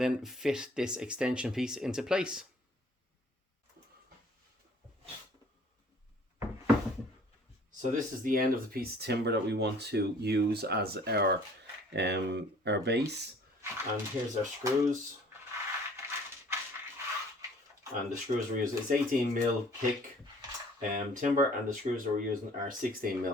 then fit this extension piece into place. So this is the end of the piece of timber that we want to use as our base. And here's our screws. And the screws we're using is 18mm thick timber, and the screws that we're using are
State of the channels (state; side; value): normal; both; correlation 0.54